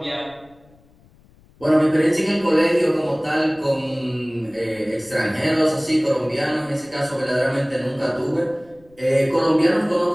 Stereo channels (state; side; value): noise; left; rumble, 29 dB below the sound